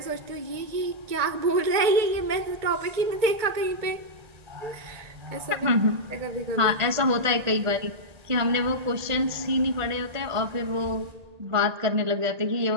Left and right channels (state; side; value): late; left; 1.8 ms